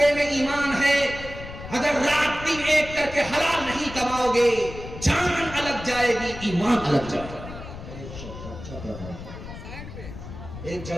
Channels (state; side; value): noise; left; rumble, 12 dB below the sound